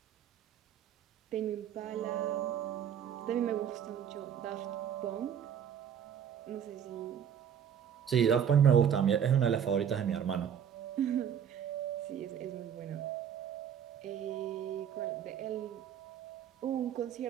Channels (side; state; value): left; quieter; 8.6 dB